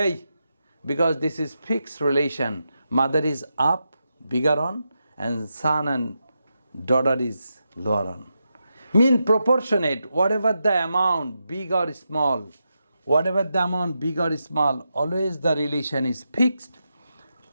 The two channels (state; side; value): inverted; both; correlation -0.87